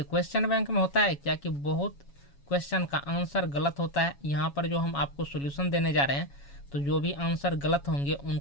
क्वेश्चन बैंक में होता है क्या कि बहुत क्वेश्चन का आंसर गलत होता है। यहाँ पर जो हम आपको सॉल्यूशन देने जा रहे हैं तो जो भी आंसर गलत होंगे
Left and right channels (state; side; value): late; right; 7.2 ms